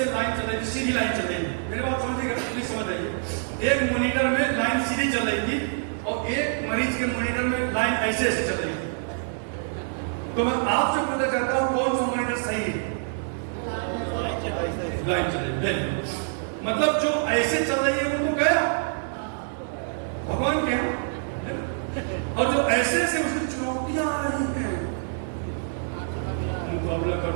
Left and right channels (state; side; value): silent; left; digital silence